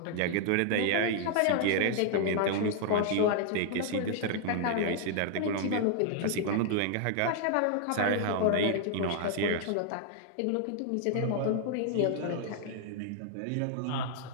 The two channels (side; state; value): both; different; correlation 0.00